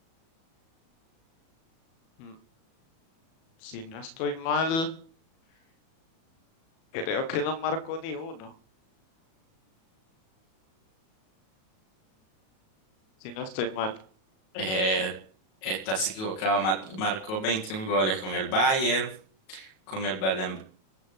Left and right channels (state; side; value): late; right; 37 ms